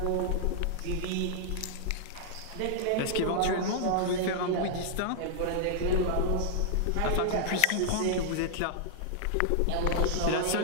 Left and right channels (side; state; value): both; different; correlation -0.01